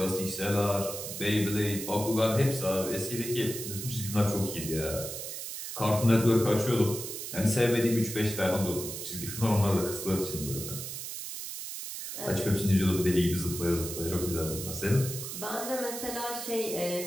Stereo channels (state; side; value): noise; right; hiss, 7 dB below the sound